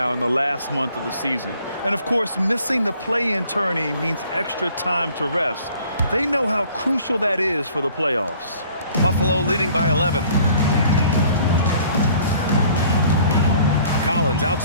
in the last month of the season. And of course, missing the play-in tourney means extra time to rest. They know how crucial that is for the playoffs. Buffalo leading by 11. Collins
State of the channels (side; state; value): both; inverted; correlation -0.55